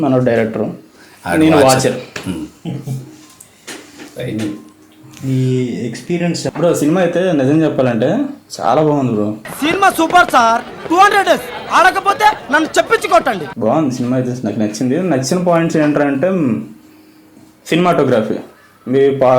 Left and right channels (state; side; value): identical; both; correlation 1.00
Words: డైరెక్టర్, నేను వాచర్. ఈ ఎక్స్పీరియన్స్ బ్రో సినిమా అయితే నిజం చెప్పాలంటే చాలా బాగుంది బ్రో. Cinema super sir. 200 ఆడకపోతే నన్ను చెప్పించుకోటండి. బాగుంది సినిమా అయితే, నాకు నచ్చింది. నచ్చిన పాయింట్స్ ఏంటంటే సినిమాటోగ్రఫీ. మీ